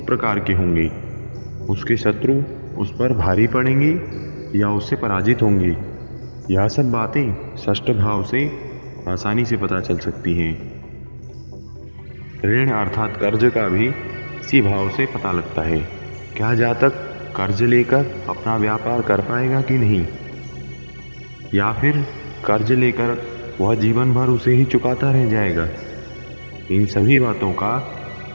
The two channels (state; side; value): inverted; both; correlation -1.00